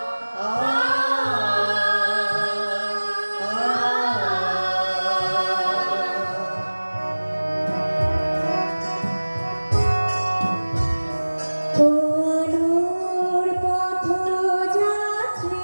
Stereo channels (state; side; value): inverted; both; correlation -1.00